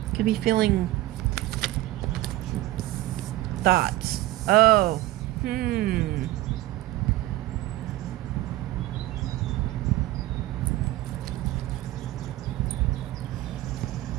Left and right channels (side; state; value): left; quieter; 16.5 dB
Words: Could be feeling thoughts. Oh,